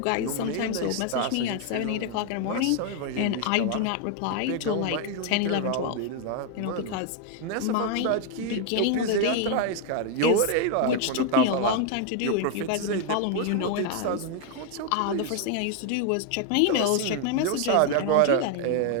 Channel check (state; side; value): different; both; correlation 0.00